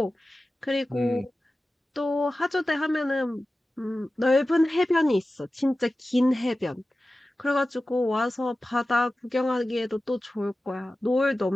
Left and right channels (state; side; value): normal; both; correlation 0.95